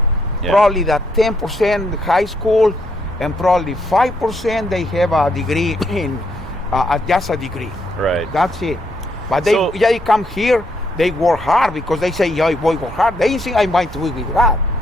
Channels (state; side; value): normal; both; correlation 0.75